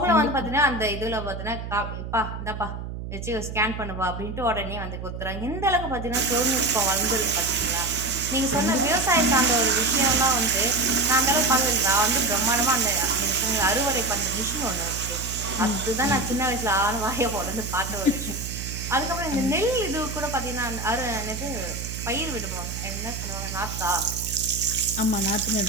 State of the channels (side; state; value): right; noise; hum, 8 dB below the sound